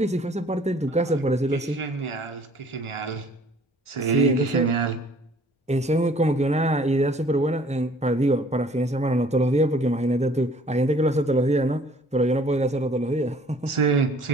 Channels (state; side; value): normal; both; correlation 0.55